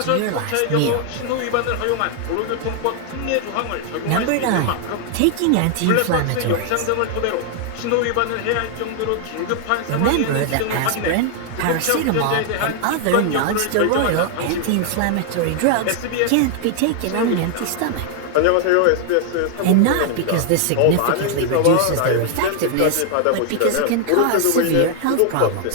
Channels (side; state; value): both; different; correlation 0.00